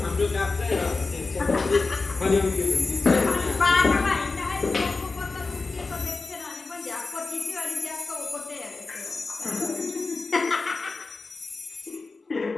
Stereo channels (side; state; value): right; quieter; 3.9 dB